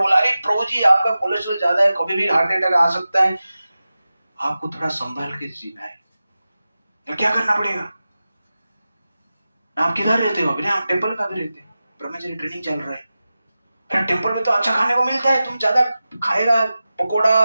अरे प्रभु जी आपका कोलेस्ट्रॉल ज्यादा है, कभी भी हार्ट अटैक आ सकता है, आपको थोड़ा संभाल के जीना है। तो क्या करना पड़ेगा? आप किधर रहते हो? अभी आप टेम्पल का भी रहते हैं, ब्रह्मचर्य ट्रेनिंग चल रहा है। टेम्पल में तो अच्छा खाने को मिलता है, तुम ज्यादा खाएगा, पकोड़ा,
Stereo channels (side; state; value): both; inverted; correlation -0.94